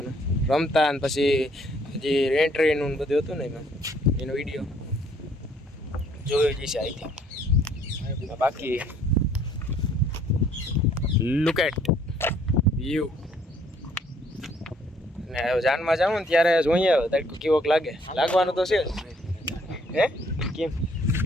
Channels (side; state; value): both; normal; correlation 0.63